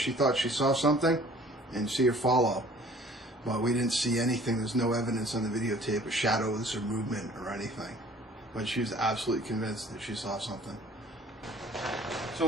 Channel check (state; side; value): normal; both; correlation 0.52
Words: thought she saw something and see her follow. But we didn't see anything. There's no evidence on the videotape of shadows or movement or anything. But she was absolutely convinced that she saw something.